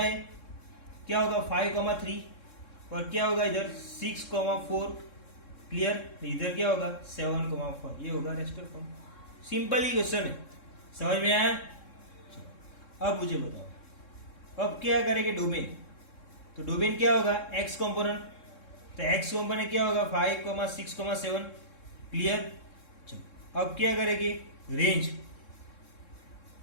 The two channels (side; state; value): right; late; 3.7 ms